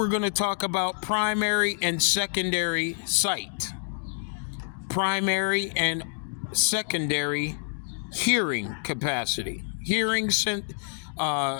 going to talk about primary and secondary sight. Primary and secondary hearing capacity. Your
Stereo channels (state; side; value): silent; right; digital silence